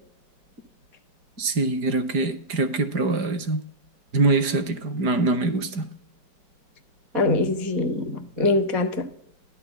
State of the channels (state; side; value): late; left; 4.9 ms